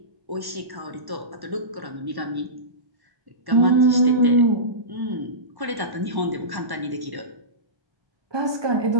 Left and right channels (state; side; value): late; left; 1.1 ms